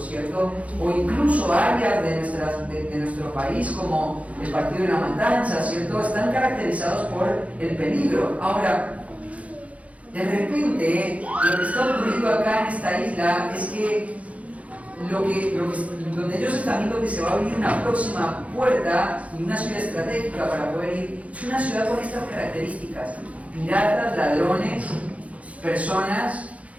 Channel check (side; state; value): left; late; 0.066 ms